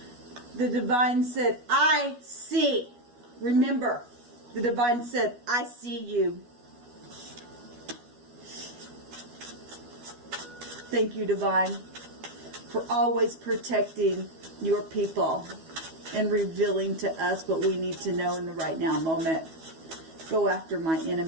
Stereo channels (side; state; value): left; late; 12 ms